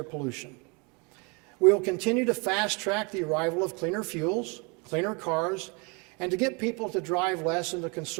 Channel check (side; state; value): left; quieter; 31.2 dB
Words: pollution. We will continue to fast-track the arrival of cleaner fuels, cleaner cars, and to get people to drive less and to